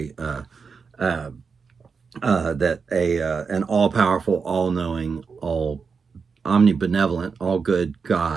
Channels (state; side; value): quieter; left; 5.4 dB